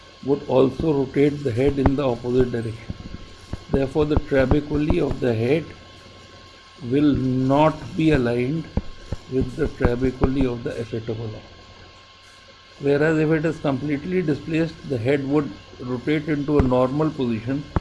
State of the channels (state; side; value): identical; both; correlation 1.00